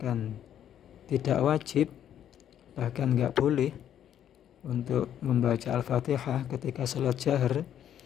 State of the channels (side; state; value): right; quieter; 10.2 dB